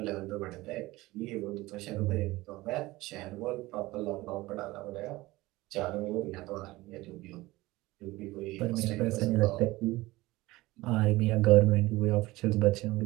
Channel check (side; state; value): left; quieter; 19.5 dB